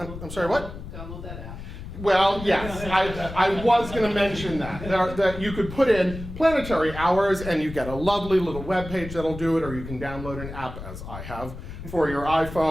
sorry, what? Download that app. Well, yes, I was going to mention that you could put in planetary hours and you get a lovely little web page that'll do it, or you can download an app, as I have, for your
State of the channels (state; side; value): noise; left; rumble, 11 dB below the sound